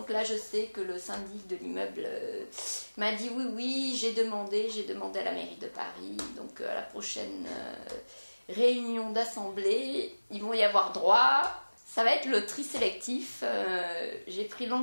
là je sais que le syndic de l'immeuble m'a dit oui, j'ai demandé à la mairie de Paris, donc à la prochaine réunion d'assemblée, ils vont y avoir droit. Ça va être le tri sélectif. J'ai pris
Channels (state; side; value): inverted; both; correlation -1.00